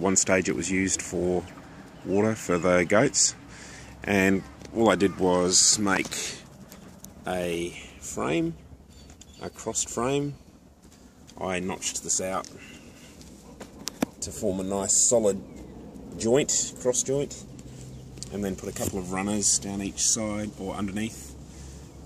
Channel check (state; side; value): identical; both; correlation 1.00